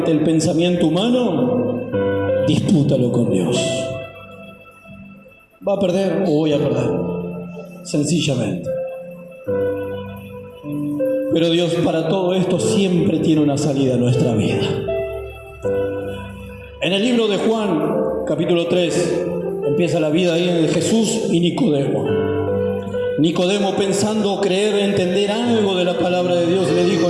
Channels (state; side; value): identical; both; correlation 1.00